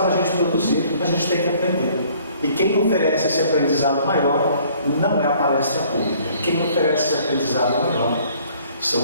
a gente produzir, a gente tem que aprender. E quem oferece esse aprendizado maior não é a palestra pública. Quem oferece esse aprendizado maior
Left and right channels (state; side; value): inverted; both; correlation -0.58